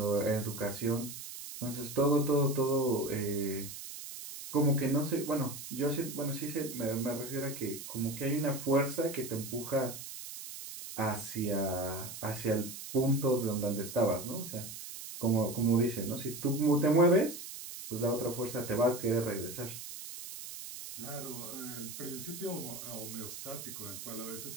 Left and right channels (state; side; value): noise; right; hiss, 10 dB below the sound